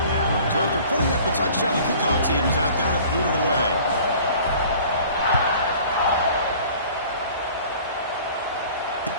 So after putting up the touchdown, the kickoff team is out there to boot it away.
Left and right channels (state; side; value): inverted; both; correlation -0.48